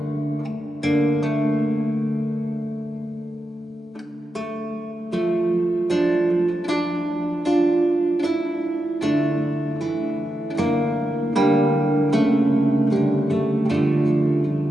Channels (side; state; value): both; normal; correlation 0.88